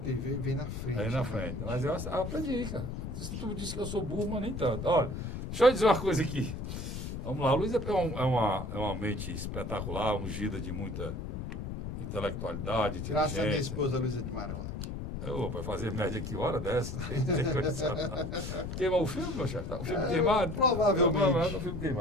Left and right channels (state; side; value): noise; left; rumble, 5 dB below the sound